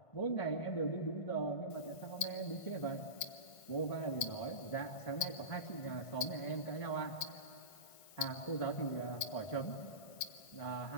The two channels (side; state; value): right; late; 1.5 ms